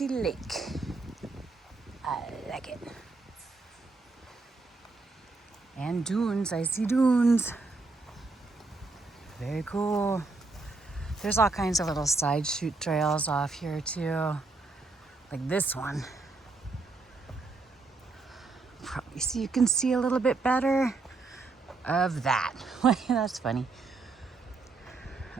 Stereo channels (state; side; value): quieter; left; 3.8 dB